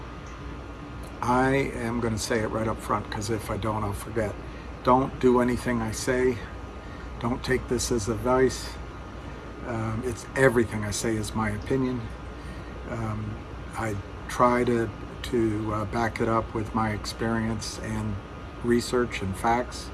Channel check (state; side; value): identical; both; correlation 1.00